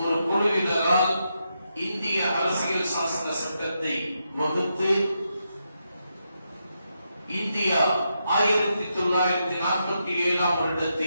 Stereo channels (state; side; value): inverted; both; correlation -0.84